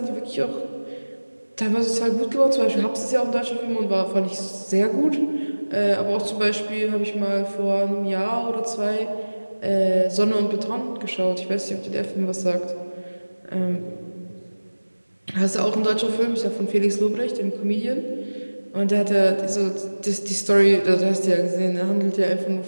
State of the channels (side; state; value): both; inverted; correlation -1.00